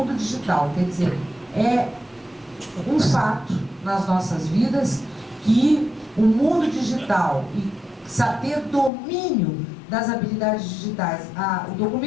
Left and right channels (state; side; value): drops out; right; at 8.9 s